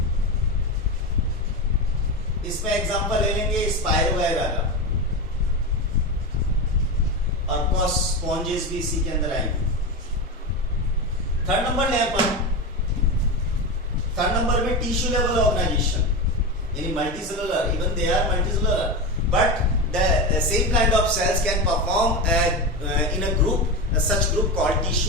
इसमें एग्जांपल ले लेंगे स्पाइरोगाइरा का, और स्पॉन्जेस भी इसी के अंदर आएंगे. थर्ड नंबर ले अपन, थर्ड नंबर में टिश्यू लेवल ऑर्गेनाइजेशन यानी multicellular. Even they are multicellular but the same kind of cells can perform in a group, such group called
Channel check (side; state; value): both; normal; correlation 0.19